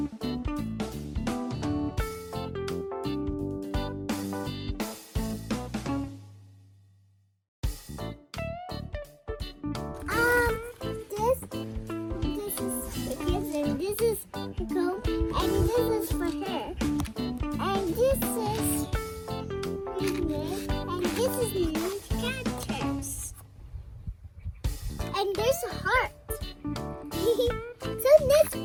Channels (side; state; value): both; identical; correlation 1.00